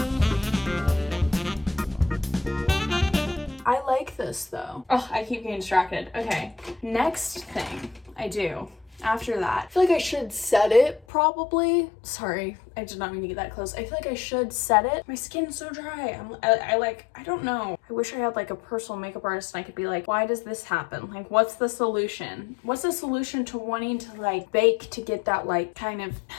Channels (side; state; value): right; drops out; at 11.1 s